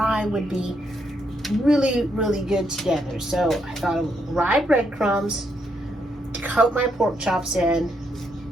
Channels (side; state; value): both; normal; correlation 0.77